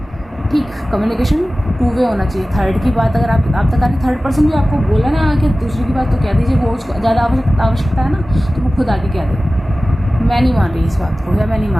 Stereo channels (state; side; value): normal; both; correlation 0.96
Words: ठीक, कम्युनिकेशन टू वे होना चाहिए। थर्ड की बात अगर आप तक आके थर्ड पर्सन भी आपको बोला ना आके दूसरे की बात, तो कह दीजिए। वो उसको ज़्यादा आवश्यकता है ना, तो वो खुद आके कह दे मैं नहीं मान रही इस बात को, या मैं नहीं